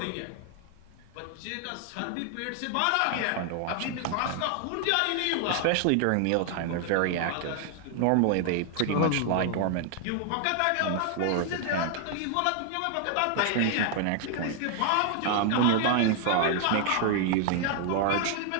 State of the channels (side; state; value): both; different; correlation 0.00